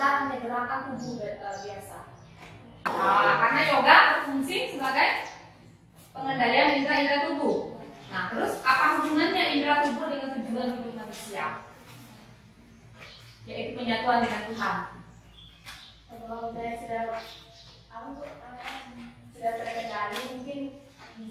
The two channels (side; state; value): both; identical; correlation 1.00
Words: hanya gerakan tubuh biasa. Nah, karena yoga berfungsi sebagai pengendalian indera-indera tubuh. Nah, terus apa hubungannya indera tubuh dengan tujuan hidup manusia? Yaitu penyatuan dengan Tuhan. Kalau saya sudah terkendali, mungkin